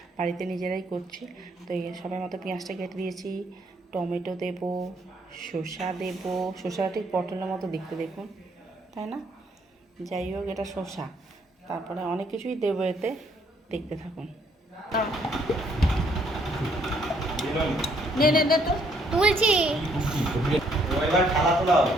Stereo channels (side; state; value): both; normal; correlation 0.68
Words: বাড়িতে নিজেরাই করছি। তো এই সবাই মতো পেঁয়াজটা কেটে দিয়েছি, টমেটো দেবো, শসা দেবো। শসাটা ঠিক পটলের মতো দেখতে, দেখুন, তাই না? যাই হোক, এটা শসা। তারপরে অনেক কিছুই দেবো এতে, দেখতে থাকুন। নে নে নে তো তুলছি।